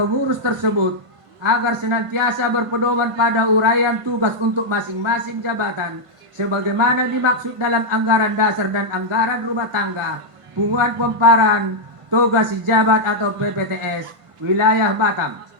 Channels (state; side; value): late; left; 1.6 ms